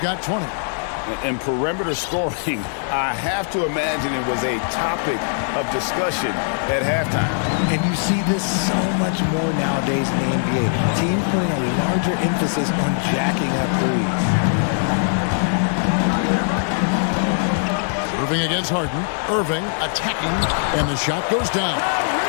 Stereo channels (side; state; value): right; silent; 65 dB below the other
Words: 20. And perimeter scoring, I have to imagine it was a topic of discussion at halftime. And you see this so much more nowadays in the NBA. Teams putting a larger emphasis on jacking up threes. Irving against Harden. Irving attacking, and the shot goes down.